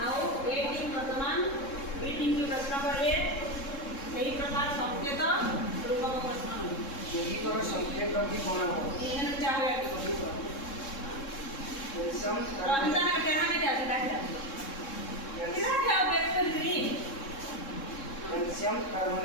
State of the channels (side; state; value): right; late; 3.7 ms